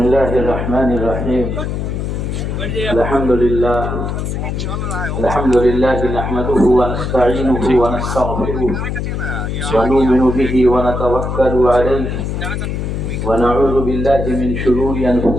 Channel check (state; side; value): noise; left; hum, 3 dB below the sound